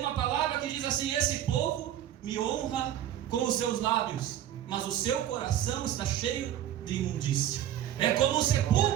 palavra que diz assim: esse povo me honra com os seus lábios, mas o seu coração está cheio de imundícia. É como um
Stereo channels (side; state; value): left; quieter; 11.5 dB